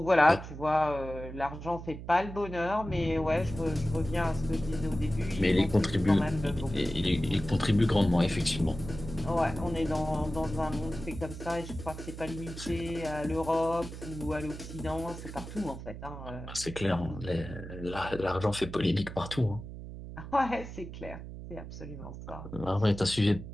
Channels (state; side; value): noise; right; hum, 11 dB below the sound